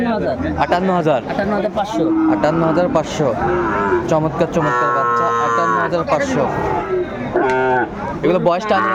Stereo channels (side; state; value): both; identical; correlation 1.00